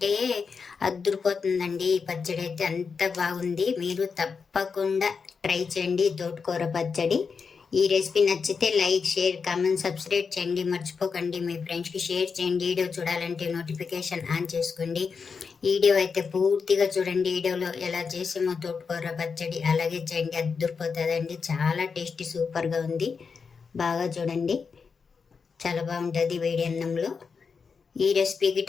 అద్దురిపోతుందండి. ఈ పచ్చడి అయితే అంత బాగుంది. మీరు తప్పకుండా ట్రై చేయండి తోటకూర పచ్చడి. ఈ రెసిపీ నచ్చితే లైక్, షేర్, కామెంట్, సబ్స్క్రైబ్ చేయండి. మర్చిపోకండి. మీ ఫ్రెండ్స్కి షేర్ చేయండి. వీడియో చూడాలంటే నోటిఫికేషన్ ఆన్ చేసుకోండి. వీడియో అయితే పూర్తిగా చూడండి. వీడియోలో ఎలా చేసామో తోటకూర పచ్చడి అలాగే చేయండి, అద్దురిపోతుందండి. చాలా టేస్టీ, సూపర్గా ఉంది. బాగా చూడండి, చాలా బాగుంటుంది వేడి అన్నంలో. ఈ రెసిపీకి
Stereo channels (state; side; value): quieter; right; 5.5 dB